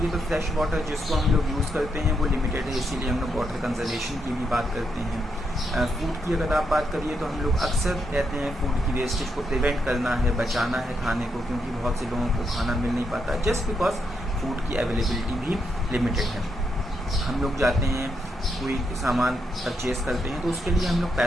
तो फ्रेश वाटर जिसको हम लोग यूज़ करते हैं वो लिमिटेड है, इसीलिए हम लोग वाटर कंजर्वेशन की भी बात करते हैं। फूड की अगर आप बात करिए तो हम लोग अक्सर कहते हैं फूड की वेस्टेज को प्रिवेंट करना है, बचाना है खाने को, क्योंकि बहुत से लोगों को खाना मिल नहीं पाता जस्ट बिकॉज फूड की अवेलेबिलिटी भी लिमिटेड है। हम लोग जाते हैं कोई सामान परचेज़ करते हैं तो उसके लिए हम लोग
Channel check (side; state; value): both; normal; correlation 0.80